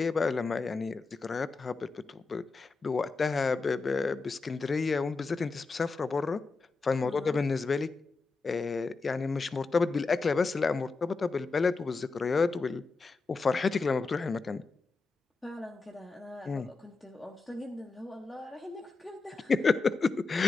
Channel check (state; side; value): quieter; right; 4.1 dB